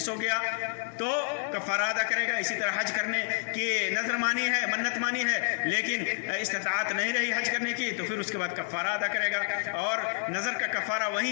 ہو گیا، تو کفارہ ادا کرے گا۔ اسی طرح حج کرنے کی نظر مانی ہے، منت مانی ہے، لیکن استطاعت نہیں رہی حج کرنے کی، تو پھر اس کے بعد کفارہ ادا کرے گا۔ اور نظر کا کفارہ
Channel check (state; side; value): silent; right; 58 dB below the other